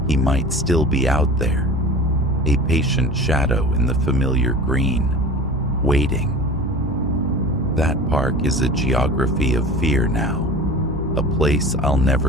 He might still be out there, a patient shadow in the familiar green, waiting. That park is a geography of fear now, a place I'll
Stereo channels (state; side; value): normal; both; correlation 0.38